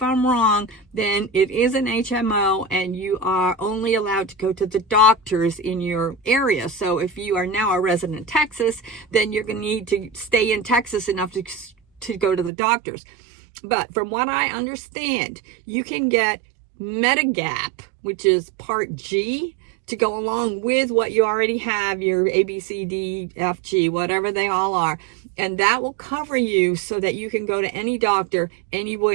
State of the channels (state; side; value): drops out; left; at 12.5 s